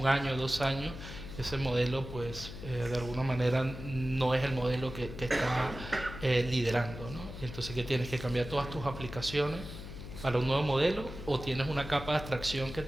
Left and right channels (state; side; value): noise; left; hum, 11 dB below the sound